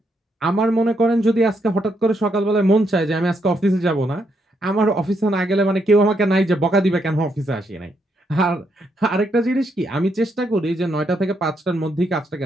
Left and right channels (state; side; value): normal; both; correlation 0.77